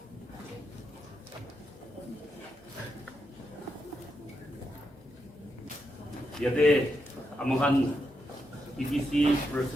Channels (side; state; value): both; normal; correlation 0.83